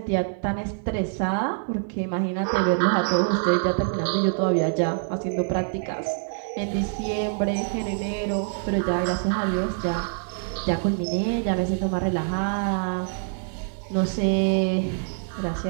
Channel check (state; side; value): silent; left; digital silence